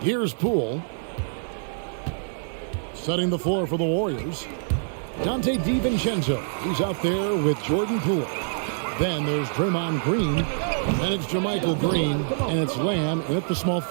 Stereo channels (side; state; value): left; silent; digital silence